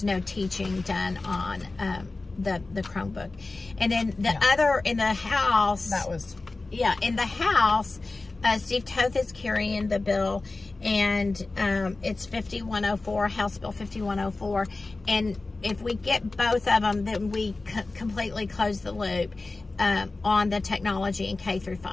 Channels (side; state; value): right; quieter; 3.4 dB